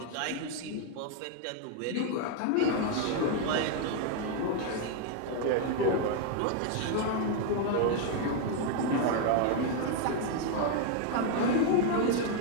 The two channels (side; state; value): both; different; correlation 0.00